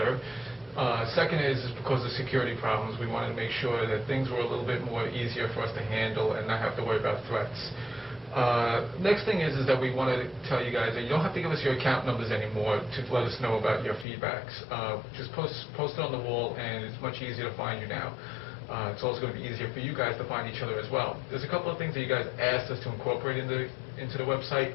Second is because of security problems. We wanted to make sure that things were a little bit more easier for us to handle and not have to worry about threats. Next thing is that we want to tell you guys that you don't have to give us your account numbers anymore to let us know about your feedbacks. Just post it on the wall, and it's much easier to find you now. It's also going to be easier for you guys to find each other as well. There's a couple of things that you guys asked us to incorporate into the website,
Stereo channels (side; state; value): right; drops out; at 14.1 s